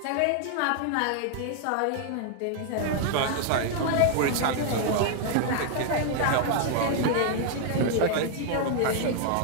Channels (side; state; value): both; different; correlation 0.00